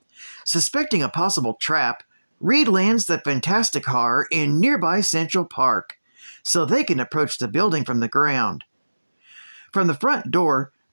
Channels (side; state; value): both; inverted; correlation -1.00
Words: Suspecting a possible trap, Reed lands the Fantastic Car in nearby Central Park, so they can approach the building from the ground. From the front door,